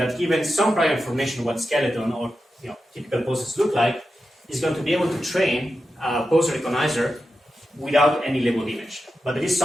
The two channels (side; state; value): both; normal; correlation 0.90